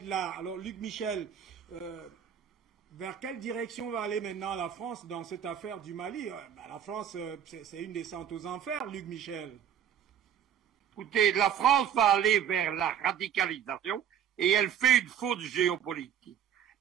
là. Alors, Luc Michel, Vers quelle direction va aller maintenant la France dans cette affaire du Mali? La France, c'est une descente aux enfers, Luc Michel. Écoutez, la France va aller vers la radicalisation et elle fait une faute géopolitique.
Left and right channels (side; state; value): left; quieter; 9.2 dB